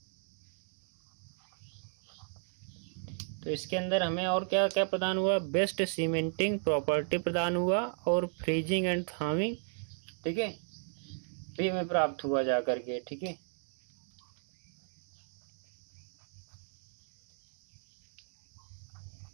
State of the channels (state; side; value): silent; left; 54 dB below the other